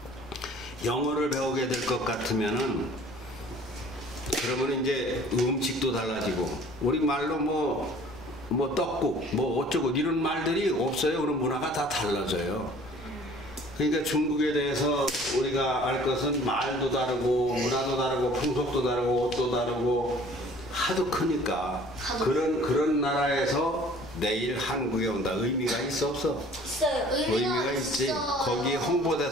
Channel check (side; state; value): left; noise; rumble, 19 dB below the sound